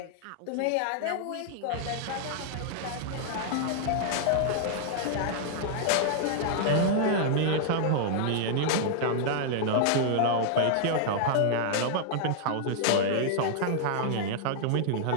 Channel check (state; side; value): different; both; correlation -0.01